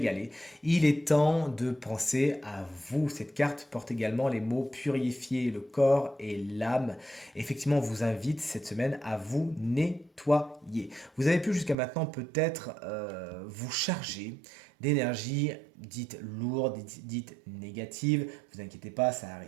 Il est temps de penser à vous. Cette carte porte également les mots purifier le corps et l'âme. Effectivement, on vous invite cette semaine à vous nettoyer. Vous avez pu jusqu'à maintenant peut-être vous charger d'énergie dite lourde, dite négative. Vous inquiétez pas, ça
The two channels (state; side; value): drops out; left; at 11.8 s